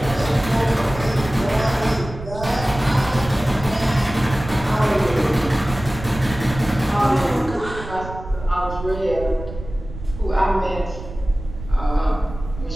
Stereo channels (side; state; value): right; noise; rumble, 11 dB below the sound